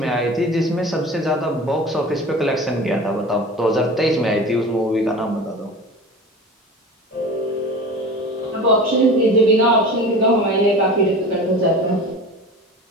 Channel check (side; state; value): both; normal; correlation 0.35